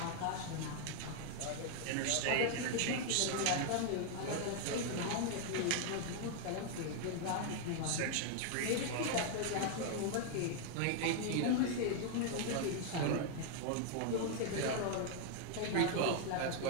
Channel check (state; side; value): different; both; correlation 0.00